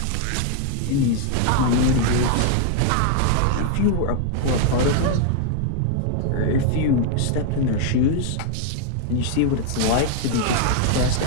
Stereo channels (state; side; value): different; both; correlation -0.01